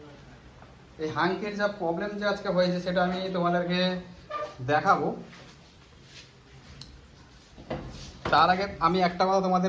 এই হাংকের যা প্রবলেম যে আজকে হয়েছে, সেটা আমি তোমাদেরকে দেখাবো। তার আগে আমি একটা কথা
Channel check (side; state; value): both; identical; correlation 1.00